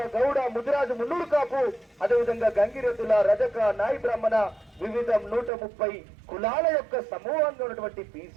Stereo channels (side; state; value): left; drops out; at 5.5 s